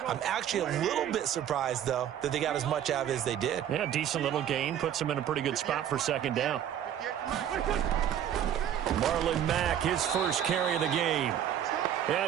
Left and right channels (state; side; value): quieter; left; 10.1 dB